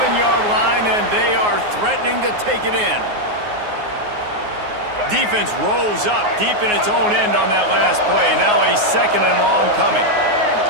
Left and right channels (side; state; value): left; late; 9.5 ms